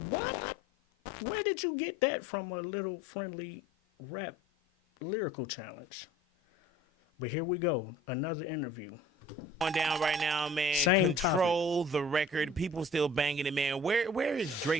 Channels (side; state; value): both; normal; correlation 0.48